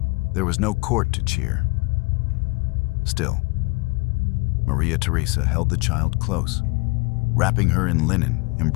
There was no court to cheer. Still, Maria Theresa held the child close, wrapping her in linen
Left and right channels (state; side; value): quieter; right; 27.3 dB